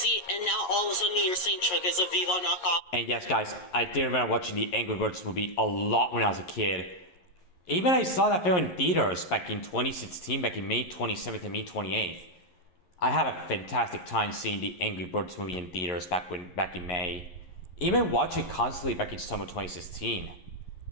and now all of a sudden you're saying Chuck is a Vivo knockoff. And yes, guys, I did remember watching the Angry Birds movie a lot when I was a kid. Even I saw that film in theaters back in 2016, back in May 27th and May 28th. I had a fantastic time seeing the Angry Birds movie in theaters back in May. Even watching it constantly back in summer 2016.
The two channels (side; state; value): right; late; 11 ms